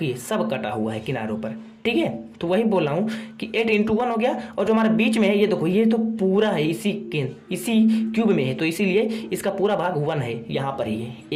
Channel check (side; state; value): both; identical; correlation 1.00